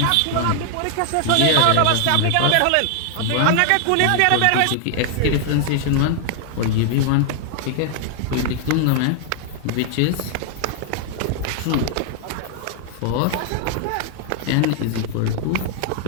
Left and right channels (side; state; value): both; different; correlation 0.00